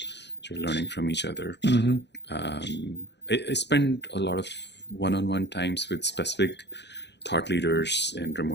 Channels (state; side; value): late; right; 0.50 ms